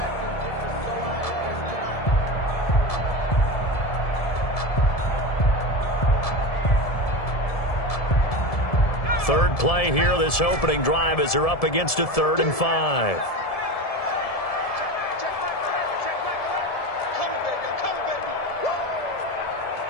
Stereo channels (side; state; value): right; late; 1.7 ms